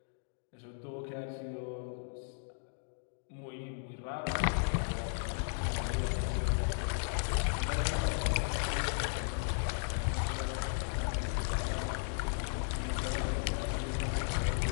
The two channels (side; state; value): right; silent; digital silence